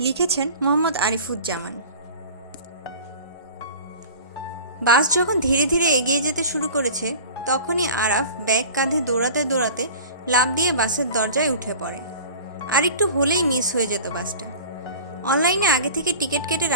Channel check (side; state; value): both; inverted; correlation -0.39